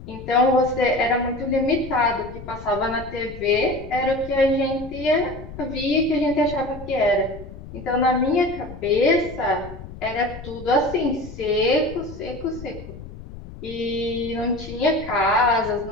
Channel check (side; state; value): left; noise; rumble, 14 dB below the sound